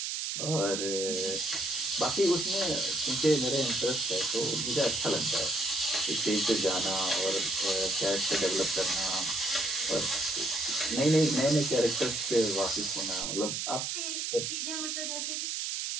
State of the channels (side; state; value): right; noise; hiss, 2 dB below the sound